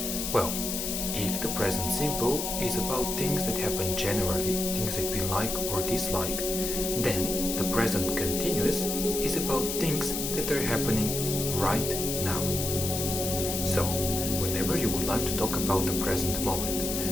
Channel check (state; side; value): noise; left; hiss, 3 dB below the sound